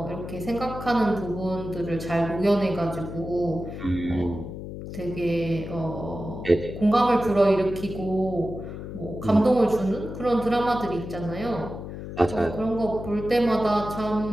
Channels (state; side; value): noise; left; hum, 9 dB below the sound